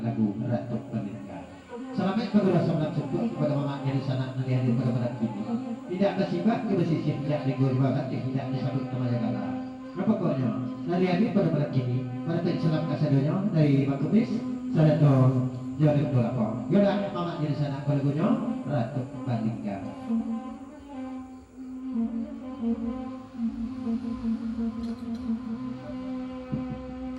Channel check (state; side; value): identical; both; correlation 1.00